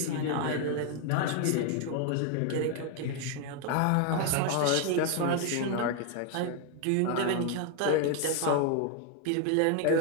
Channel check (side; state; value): both; different; correlation 0.01